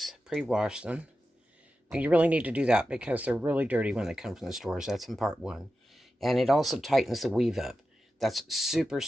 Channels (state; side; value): normal; both; correlation 0.92